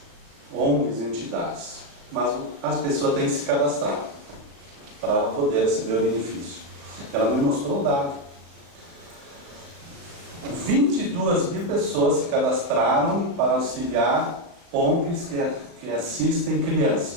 ONGs e entidades. Mas as pessoas têm que se cadastrar para ela poder receber o benefício. Ela me mostrou o dado. 22 mil pessoas se cadastraram para auxiliar ONGs que assistem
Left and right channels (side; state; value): left; late; 36 ms